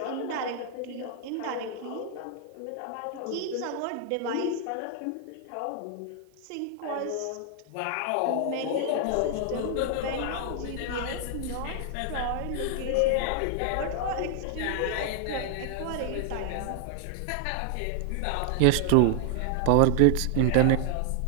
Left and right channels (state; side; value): different; both; correlation 0.00